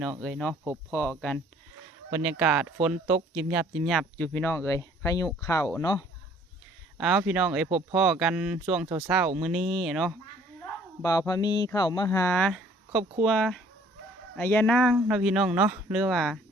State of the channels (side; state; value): both; normal; correlation 0.57